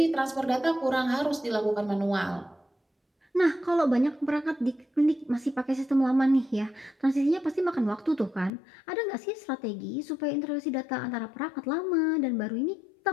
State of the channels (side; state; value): right; drops out; at 8.5 s